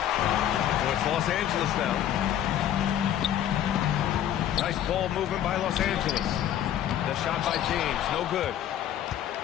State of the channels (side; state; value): right; quieter; 10.9 dB